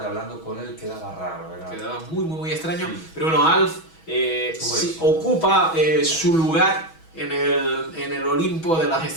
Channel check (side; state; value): right; late; 6.2 ms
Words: hablando con él quedaba raro, ¿verdad? Quedaba muy extraño, Sí. pero bueno, Alf Todo sí, eso. ocupa su lugar en el Olimpo de las